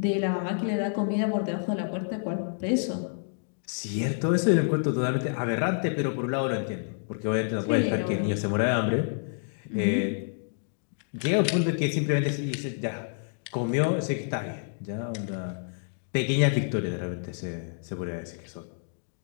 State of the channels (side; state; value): right; silent; digital silence